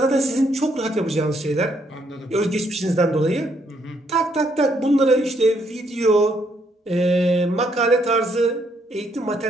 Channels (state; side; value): normal; both; correlation 0.72